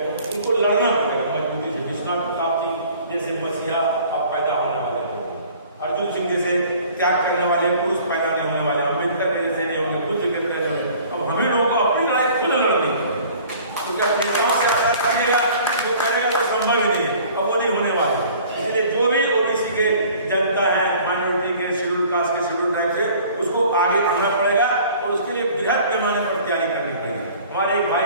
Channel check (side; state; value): both; inverted; correlation -0.50